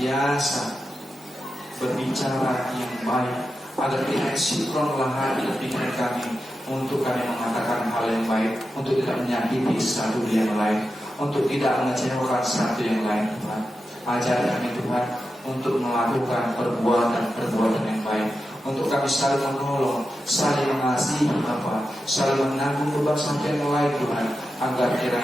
berbicara yang baik, agar tidak sinkronlah hati dan pikiran kami untuk kami mengatakan hal yang baik, untuk tidak menyakiti satu yang lain, untuk tidak mengecewakan satu yang lain Tuhan. Ajar kami Tuhan untuk melakukan perbuatan yang baik, untuk kami saling menolong, saling mengasihi Bapa, saling menanggung beban satu yang lain Tuhan, agar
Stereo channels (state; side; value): normal; both; correlation 0.90